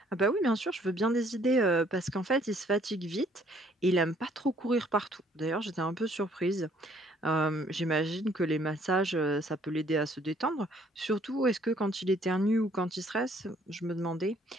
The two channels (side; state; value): both; normal; correlation 0.62